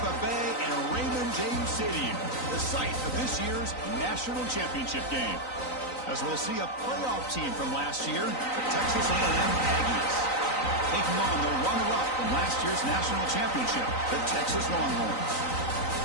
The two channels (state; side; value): late; right; 3.9 ms